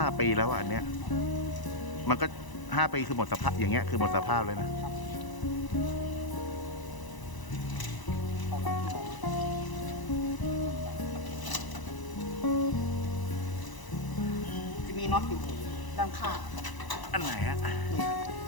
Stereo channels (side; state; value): right; late; 1.0 ms